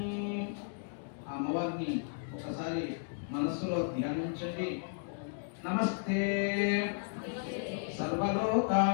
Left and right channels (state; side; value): silent; right; digital silence